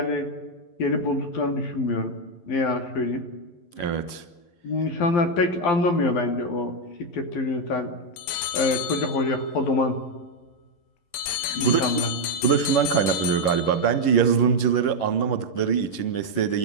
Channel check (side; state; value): right; late; 11 ms